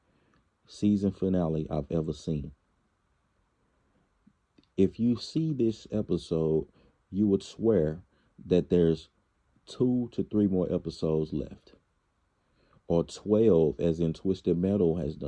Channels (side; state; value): both; identical; correlation 1.00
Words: season finale I've ever seen. If you see this episode, you would swear that there's 2 to 3 more episodes left, or 12, as in Twisted Metal has